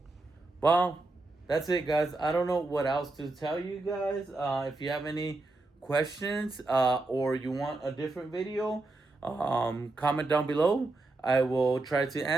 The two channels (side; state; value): left; quieter; 3.1 dB